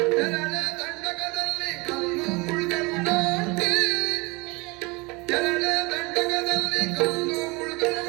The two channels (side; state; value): left; quieter; 25.8 dB